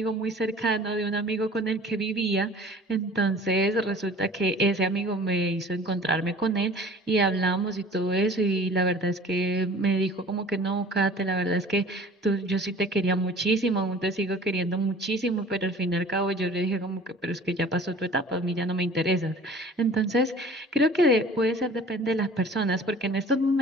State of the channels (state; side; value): normal; both; correlation 0.46